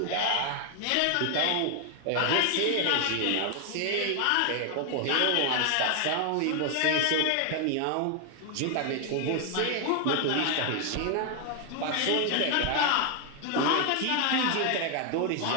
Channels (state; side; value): different; both; correlation 0.01